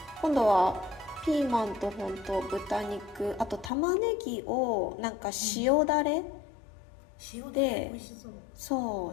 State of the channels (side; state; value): right; drops out; at 3.7 s